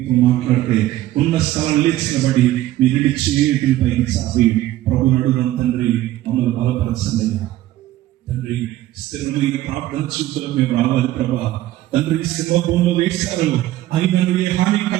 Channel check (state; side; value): quieter; left; 14.9 dB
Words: మాట్లాడితే ఉన్న స్థలం లేచినబడి మీ రెండు చేతులపై సాగి ప్రభు నడుగున తండ్రి మమ్మల్ని బలపరచండి తండ్రి. స్థిరమైన ప్రార్థన చూపులకు మేము రావాలి ప్రభా. తండ్రి సింహభూమిలో వేశారు, అయినా ఏ హాని